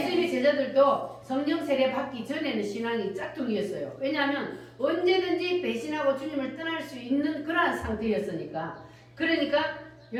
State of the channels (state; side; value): identical; both; correlation 1.00